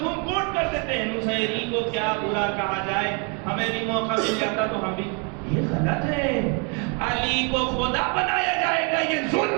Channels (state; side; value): quieter; left; 35.5 dB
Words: کوٹ کر دیتے ہیں، نصیری کو کیا برا کہا جائے، ہمیں بھی موقع مل جاتا تو ہم بھی. یہ غلط ہے. علی کو خدا بنایا جائے گا، یہ